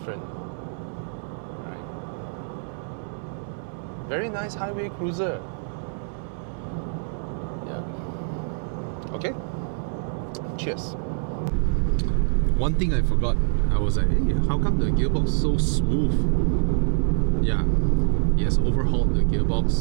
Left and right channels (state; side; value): silent; left; 62 dB below the other